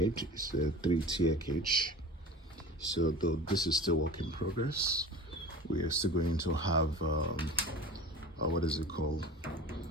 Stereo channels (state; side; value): normal; both; correlation 0.37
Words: It's a 3-tier cage. So though this is still work in progress, we are still going to have what is it called?